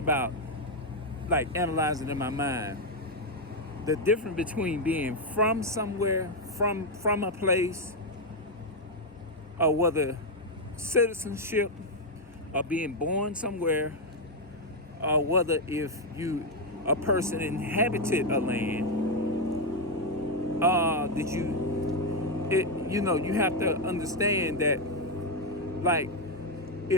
about like analyzing in my mind the difference between being from somewhere, from a place, or whether citizenship or being born somewhere, or whether if you a person inhabited a land, did you have to understand that, like,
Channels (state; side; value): normal; both; correlation 0.02